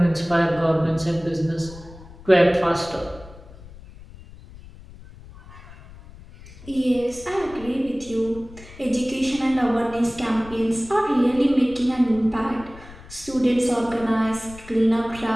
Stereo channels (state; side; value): noise; left; rumble, 18 dB below the sound